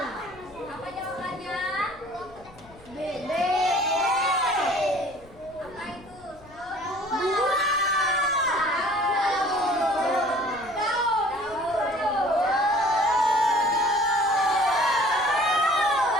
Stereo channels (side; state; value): left; noise; rumble, 24 dB below the sound